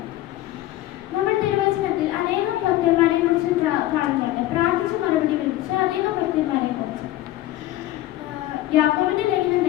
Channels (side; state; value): right; quieter; 15.1 dB